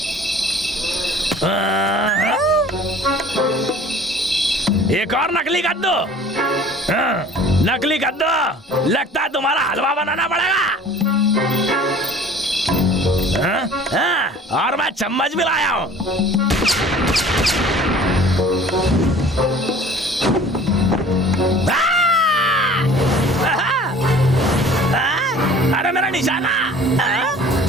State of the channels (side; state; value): both; normal; correlation 0.48